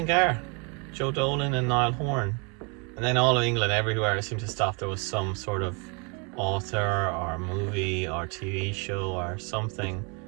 Joe Dolan and Niall Horan. And then all of England, everywhere I seemed to stop, there was some sort of author or movie or TV show or something,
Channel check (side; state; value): left; quieter; 33.2 dB